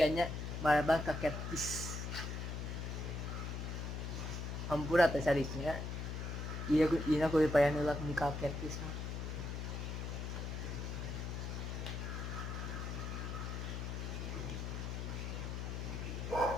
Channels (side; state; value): left; noise; hum, 4 dB below the sound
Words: marabang kaketis hampura teh sariknya iya aku dipayan ulak ni kaketis mah